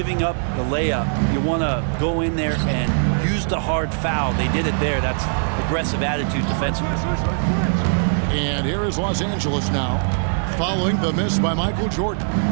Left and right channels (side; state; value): left; silent; digital silence